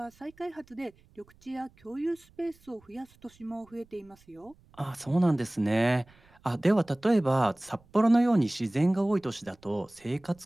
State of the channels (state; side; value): noise; right; rumble, 29 dB below the sound